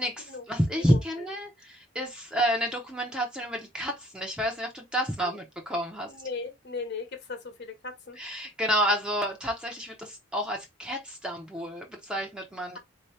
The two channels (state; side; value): normal; both; correlation 0.58